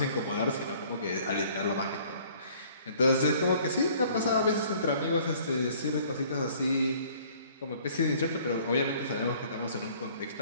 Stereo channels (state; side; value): inverted; both; correlation -0.56